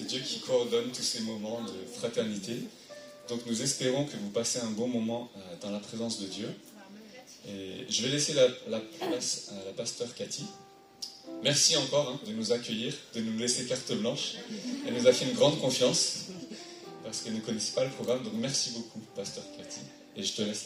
Dieu qui coordonne tous ces moments de fraternité. Donc nous espérons que vous passez un bon moment dans la présence de Dieu. Et je vais laisser la place à la pasteur Cathy. Merci encore de nous accueillir, de nous laisser carte blanche. Elle nous a fait une grande confiance parce qu'elle ne connaissait pas le programme. Donc merci beaucoup, pasteur Cathy. Et je te laisse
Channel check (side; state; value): both; identical; correlation 1.00